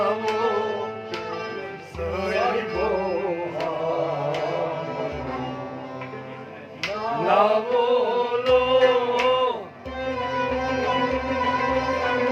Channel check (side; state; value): both; identical; correlation 1.00